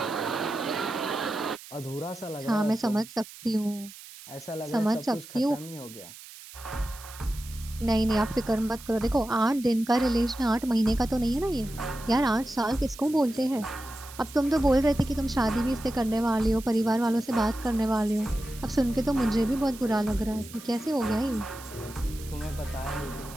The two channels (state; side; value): noise; right; hiss, 17 dB below the sound